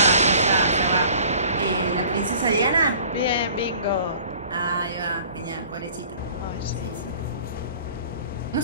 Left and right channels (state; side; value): inverted; both; correlation -0.49